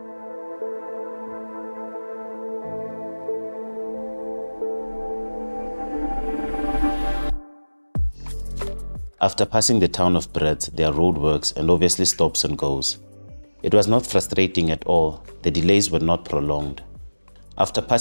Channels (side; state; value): both; inverted; correlation -1.00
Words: After passing the town of Brits, there are roadworks and obviously stops and goes. It was not frustrating at all. The delays were not prolonged. After